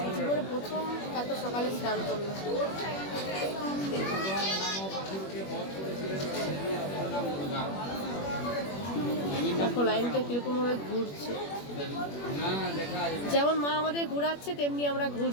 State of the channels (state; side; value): late; right; 21 ms